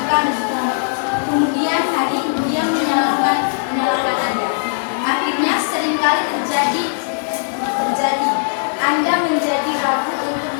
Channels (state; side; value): silent; right; 67 dB below the other